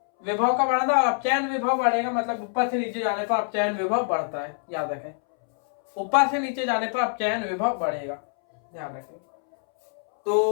विभव का बढ़ना, और अपचयन विभव बढ़ेगा मतलब ऊपर से नीचे जाने पर अपचयन विभव बढ़ता है, याद रखें, ऊपर से नीचे जाने पर अपचयन विभव बढ़ेगा, ध्यान रखें।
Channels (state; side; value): silent; right; 62 dB below the other